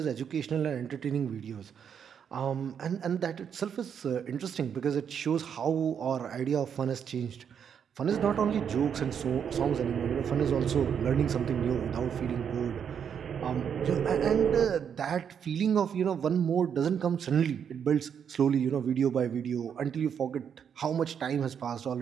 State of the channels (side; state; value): left; quieter; 7.8 dB